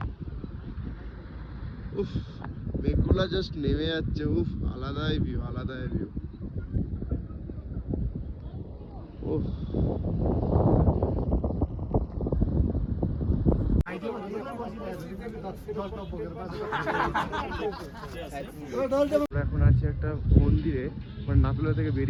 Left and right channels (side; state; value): both; identical; correlation 1.00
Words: উফ, মেঘগুলা জাস্ট নেমে যাচ্ছে, উফ, আলাদাই ভিউ, আলাদাই ভিউ, উফ। আমরা এখন আছি একটা মন্দিরে, মানে নাতুলা থেকে